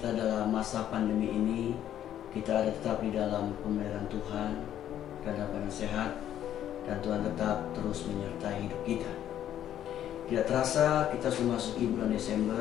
dalam masa pandemi ini, kita ada tetap di dalam pemeliharaan Tuhan, dalam keadaan sehat, dan Tuhan tetap terus menyertai hidup kita. Tidak terasa kita sudah masuk bulan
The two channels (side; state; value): right; quieter; 11.0 dB